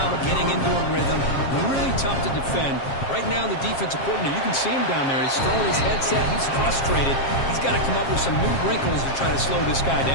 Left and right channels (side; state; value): right; late; 7.4 ms